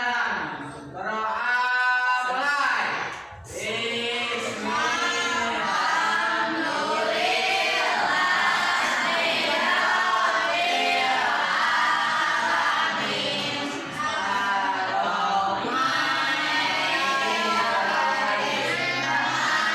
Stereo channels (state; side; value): identical; both; correlation 1.00